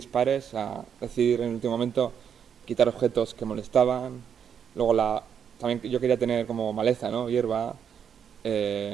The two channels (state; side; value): quieter; left; 7.9 dB